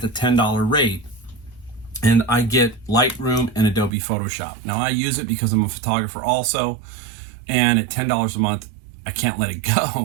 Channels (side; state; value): left; drops out; at 3.9 s